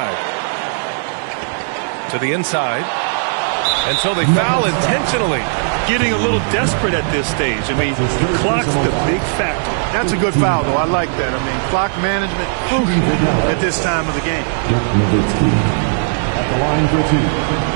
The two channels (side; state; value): left; silent; 62 dB below the other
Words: To the inside. And so they foul intentionally. Getting a little desperate at this stage. I mean, the clock's the big factor. That's a good foul, though. I like that. I mean, clock management crucial at this time of the game. At the line for two.